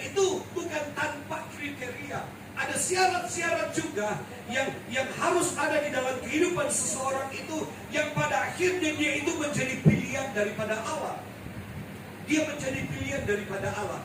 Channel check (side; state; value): both; identical; correlation 1.00